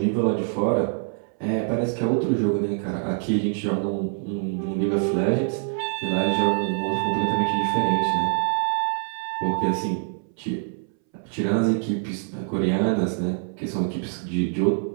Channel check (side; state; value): left; silent; 62 dB below the other